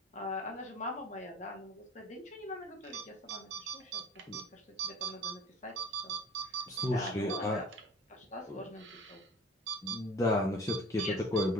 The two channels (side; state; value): both; normal; correlation 0.44